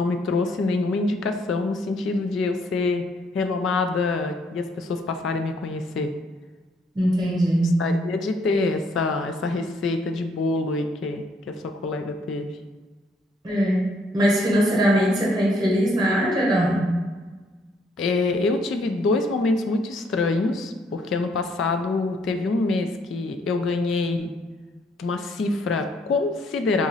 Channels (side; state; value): both; normal; correlation 0.68